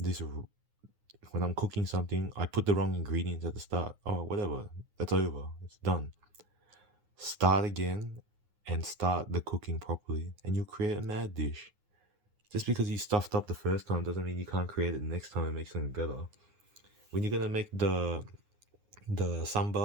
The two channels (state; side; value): late; left; 9.6 ms